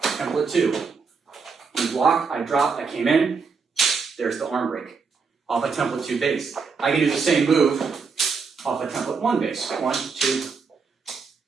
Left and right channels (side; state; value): left; quieter; 5.2 dB